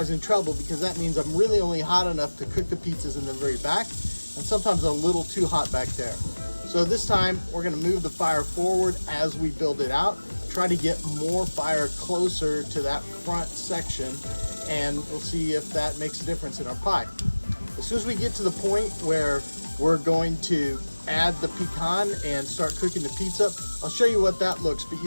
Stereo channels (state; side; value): inverted; both; correlation -1.00